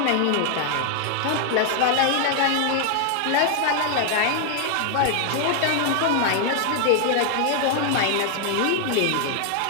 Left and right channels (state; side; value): different; both; correlation 0.00